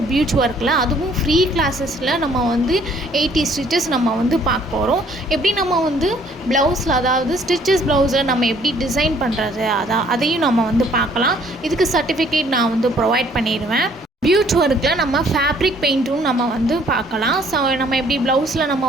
பியூச் ஒர்க்கில் அதுவும் ஃப்ரீ கிளாஸஸில் நம்ம வந்து 80 ஸ்டிச்சஸ் நம்ம வந்து பார்க்க போகிறோம். எப்படி நம்ம வந்து ப்ளவுஸில், அதாவது ஸ்டிச்சஸ் ப்ளவுஸில் நம்ம எப்படி டிசைன் பண்ணுறது அதையும் நம்ம வந்து பார்க்கலாம். இதுக்கு சர்டிஃபிகேட் நான் வந்து ப்ரொவைட் பண்ணிடுவேன். பியூச் ஒர்க்கில் நம்ம ஃபேப்ரிக் பெயிண்ட்டும் நம்ம வந்து பார்க்கலாம். ஸோ நம்ம எப்படி ப்ளவுஸில் நம்ம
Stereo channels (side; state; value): both; normal; correlation 0.60